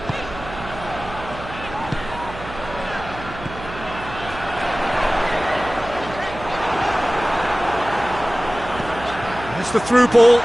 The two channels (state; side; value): noise; right; hum, 13 dB below the sound